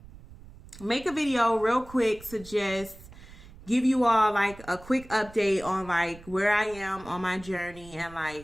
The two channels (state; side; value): noise; right; rumble, 19 dB below the sound